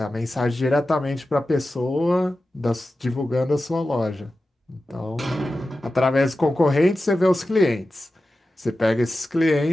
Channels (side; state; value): both; normal; correlation 0.93